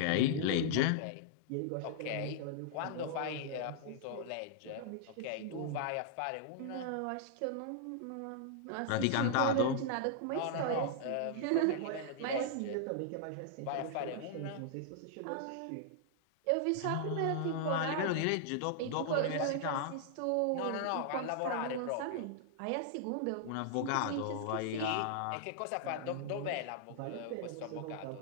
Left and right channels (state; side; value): different; both; correlation -0.01